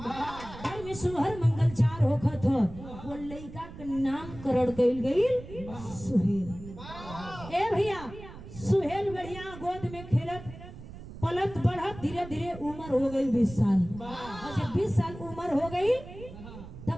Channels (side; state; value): right; noise; rumble, 14 dB below the sound